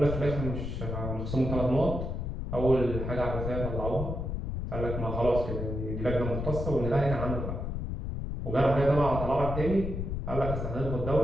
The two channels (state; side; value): noise; left; rumble, 4 dB below the sound